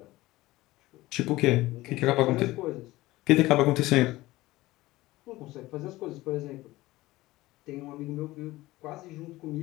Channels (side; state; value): right; quieter; 18.3 dB